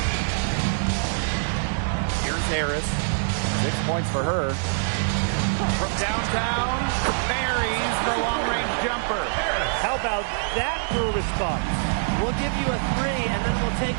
Here's Harris. 6 points for her. From downtown, buries the long-range jumper. How about that for a response? We'll give you a 3, and then we'll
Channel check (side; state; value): left; silent; 62 dB below the other